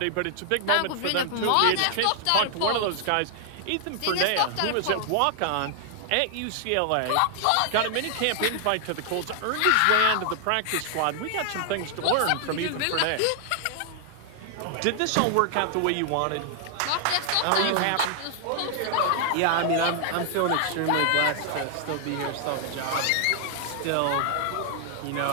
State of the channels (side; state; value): both; different; correlation -0.01